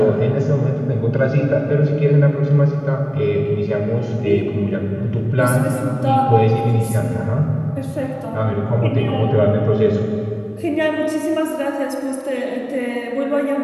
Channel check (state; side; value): identical; both; correlation 1.00